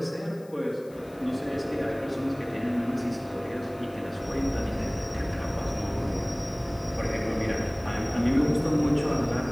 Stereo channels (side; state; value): left; noise; hiss, 26 dB below the sound